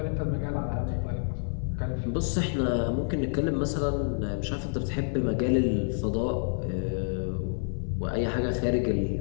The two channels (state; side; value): silent; right; digital silence